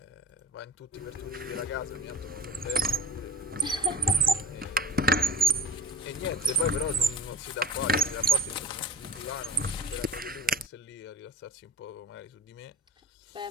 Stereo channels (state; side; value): normal; both; correlation 0.35